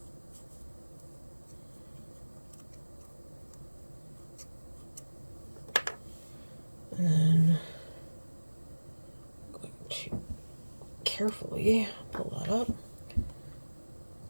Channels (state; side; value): inverted; both; correlation -1.00